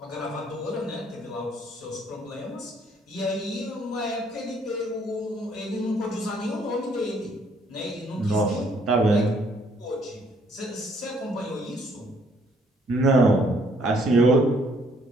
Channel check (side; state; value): both; normal; correlation 0.65